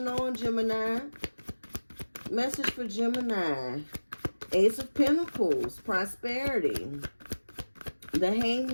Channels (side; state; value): both; inverted; correlation -1.00